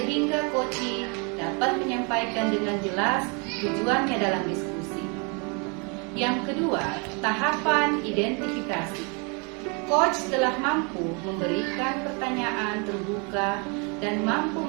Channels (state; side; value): quieter; left; 33.5 dB